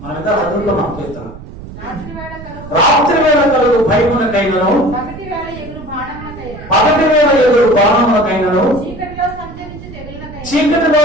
మనం ఎంత చదువుతున్నాం కీర్తన. రాత్రి వేళ కలుగు భయమునకైనను, పగటి వేళ ఎదురు బాణమునకైనను, చీకటిలో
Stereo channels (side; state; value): right; noise; rumble, 14 dB below the sound